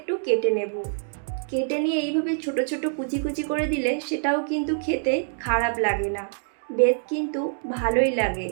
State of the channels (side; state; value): left; silent; digital silence